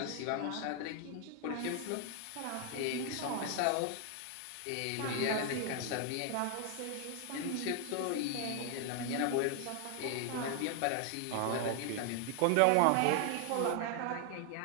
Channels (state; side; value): different; both; correlation 0.00